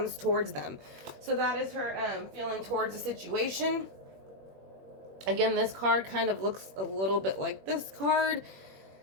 towards them. So that is her feeling towards the situation. Again, this card kind of looks a little bit like this card.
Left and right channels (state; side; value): late; left; 21 ms